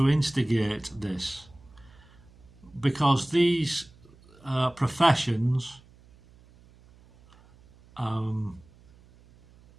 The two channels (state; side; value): noise; right; hum, 26 dB below the sound